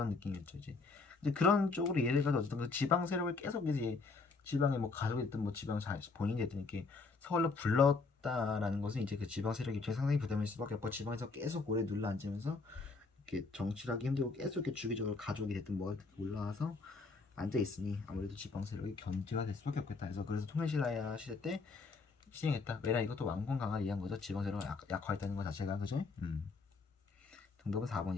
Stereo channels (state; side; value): quieter; right; 4.2 dB